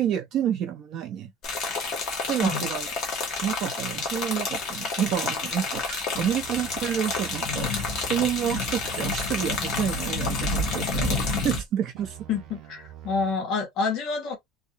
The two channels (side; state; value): both; normal; correlation 0.44